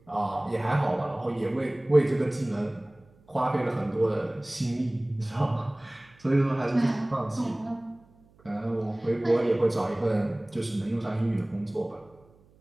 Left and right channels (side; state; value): right; noise; hum, 30 dB below the sound